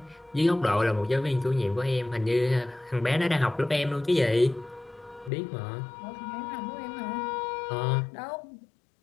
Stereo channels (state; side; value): drops out; right; at 5.3 s